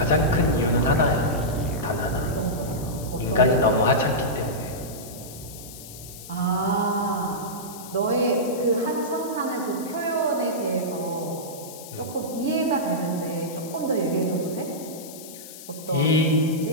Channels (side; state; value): left; noise; hiss, 15 dB below the sound